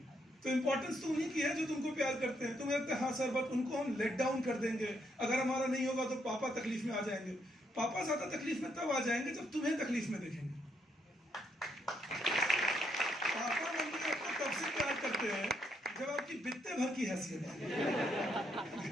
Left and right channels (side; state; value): both; normal; correlation 0.75